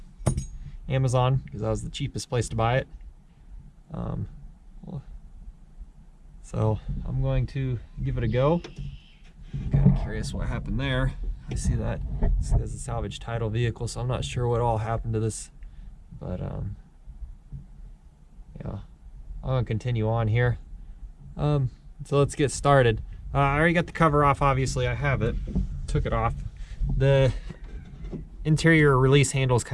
Amazon because that was the cheapest place to buy it. So I'm going to give it a go. I'm kind of curious what happened there. I see that this is a salvage title vehicle, so I'm not sure what all happened to this, but yeah, I'm gonna continue on here. So let's get started. I already got the cover off, obviously. I have it. Took it off. The interior release handle is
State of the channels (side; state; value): both; identical; correlation 1.00